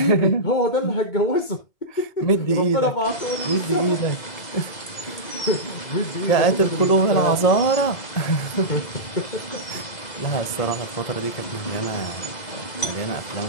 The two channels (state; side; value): late; right; 2.0 ms